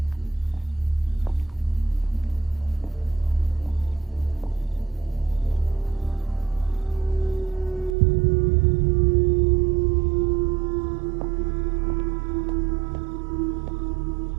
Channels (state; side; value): drops out; left; at 7.9 s